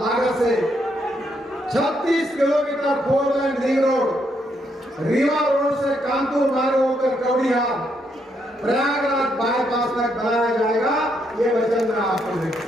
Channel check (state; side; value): normal; both; correlation 0.76